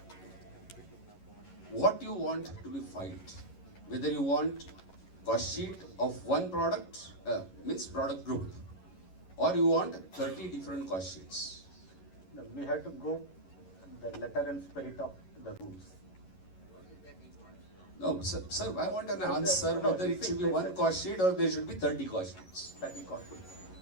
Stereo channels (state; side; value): late; right; 11 ms